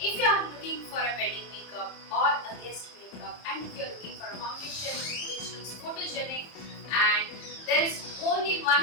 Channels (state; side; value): late; right; 30 ms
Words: you are looking for a wedding makeup or a guest makeup and if you are looking for a foundation which looks photogenic, and there is only